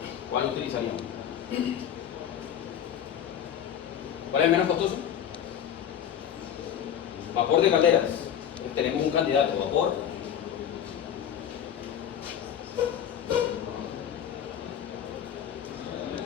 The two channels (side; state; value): right; quieter; 9.4 dB